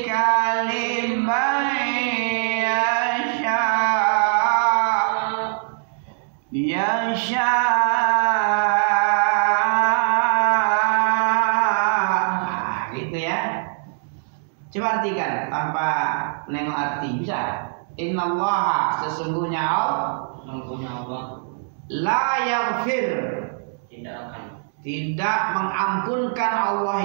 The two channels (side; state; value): left; silent; digital silence